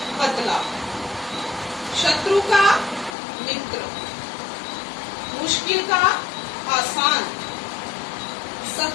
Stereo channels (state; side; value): drops out; right; at 3.2 s